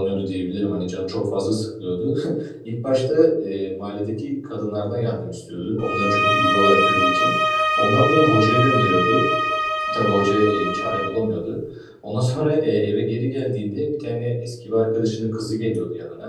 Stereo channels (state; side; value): identical; both; correlation 1.00